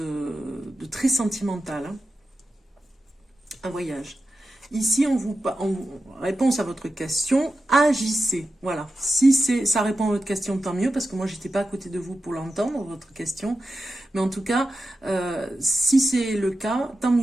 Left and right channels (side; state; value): both; normal; correlation 0.91